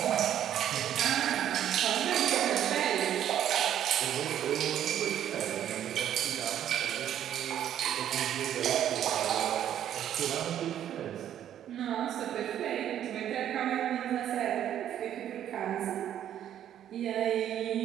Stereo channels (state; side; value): quieter; left; 10.6 dB